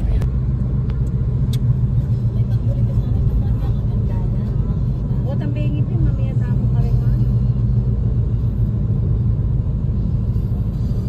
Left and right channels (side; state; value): both; identical; correlation 1.00